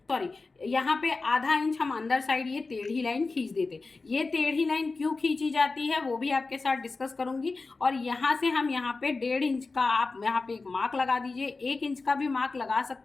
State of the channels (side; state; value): right; quieter; 3.8 dB